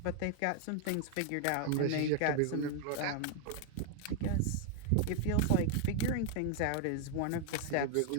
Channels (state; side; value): different; both; correlation 0.00